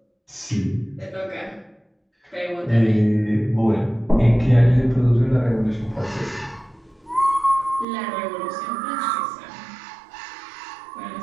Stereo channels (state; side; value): drops out; left; at 7.9 s